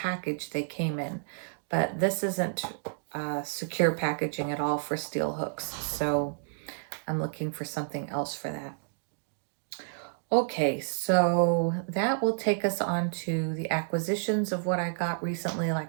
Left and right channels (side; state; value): left; silent; digital silence